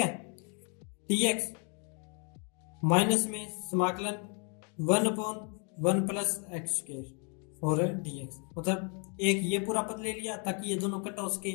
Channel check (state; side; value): quieter; right; 38.3 dB